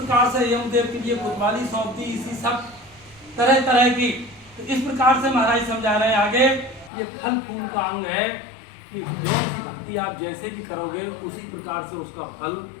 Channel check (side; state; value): right; drops out; at 6.9 s